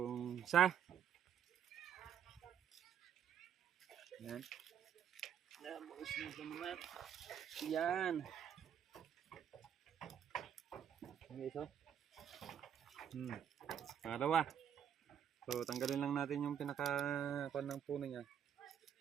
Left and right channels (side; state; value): left; quieter; 9.0 dB